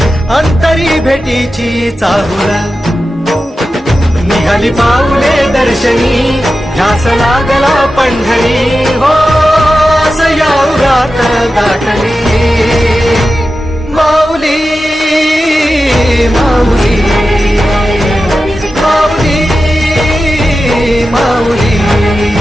अंतरी भेटीची चाहुल निघाली पाऊले दर्शनी ध्यास लागला पंढरी हो सयाउरात गाठली माऊली माऊली माऊली माऊली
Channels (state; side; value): normal; both; correlation 0.92